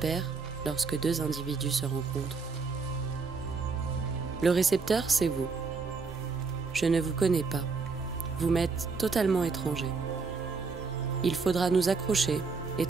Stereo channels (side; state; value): left; quieter; 4.7 dB